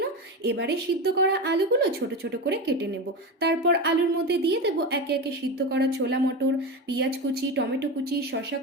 এবারে সিদ্ধ করা আলুগুলো ছোট ছোট করে কেটে নেব। তারপর আলুর মধ্যে দিয়ে দেবো একে একে সিদ্ধ করা ছোলা মটর, পেঁয়াজ কুচি, টমেটো কুচি, শসা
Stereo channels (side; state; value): both; normal; correlation 0.21